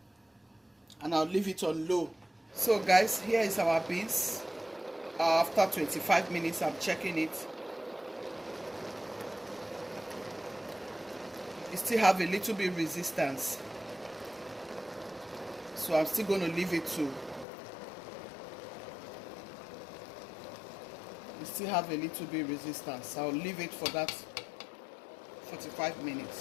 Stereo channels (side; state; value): right; drops out; at 17.4 s